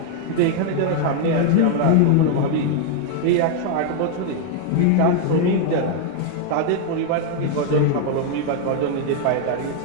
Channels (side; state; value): both; different; correlation 0.00